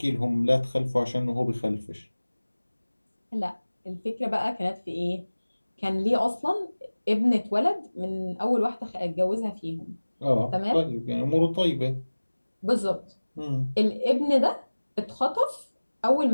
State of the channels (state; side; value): inverted; both; correlation -1.00